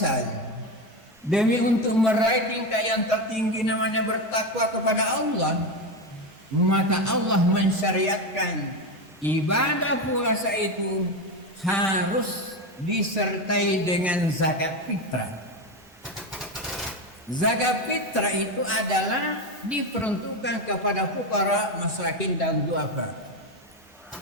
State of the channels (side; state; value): both; normal; correlation 0.15